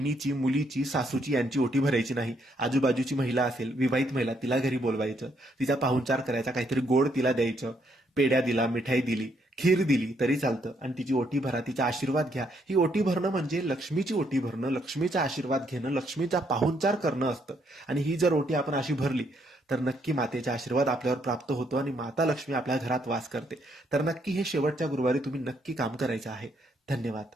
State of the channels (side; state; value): both; normal; correlation 0.72